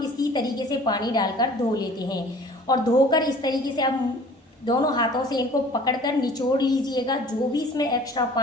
इसी तरीके से पानी डालकर धो लेते हैं। और धोकर इस तरीके से आप दोनों हाथों से इनको पकड़कर निचोड़ लीजिएगा। जो भी इसमें एक्स्ट्रा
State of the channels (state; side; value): normal; both; correlation 0.49